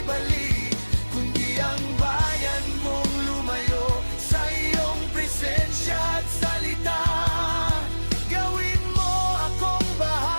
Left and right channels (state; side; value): inverted; both; correlation -1.00